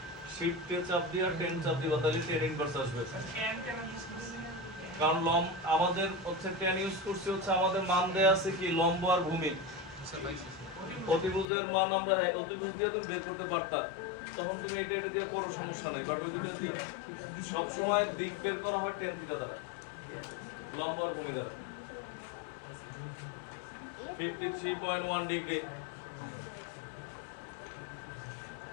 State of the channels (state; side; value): drops out; right; at 11.5 s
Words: শিফটে চাপ দিয়ে আর 10 চাপ দিবা, তাহলে tan ইনভার্স আসবে। ক্যান কেন ইউজ করছি না কারণ আমাদের হচ্ছে tan ইউজ করছি হচ্ছে আমাদের মান দেয়া আছে কি লম্ব আর ভূমি। सर भाई অতিভুজের মান আমরা অতিভুজ দিয়ে তুমি বের করতে পারতা, তখন তুমি এটা এটা দিয়ে করো সমস্যা নাই। বাট ওই দুটো দিয়ে সব সময় দিক বের করা হয় tan থিটা দ্বারা, লম্ব আর ভূমি দ্বারা। 53.1 ডিগ্রি।